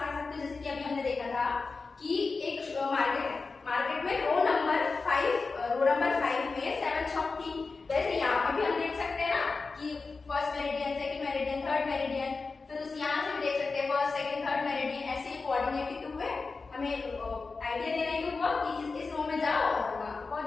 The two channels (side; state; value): right; quieter; 4.2 dB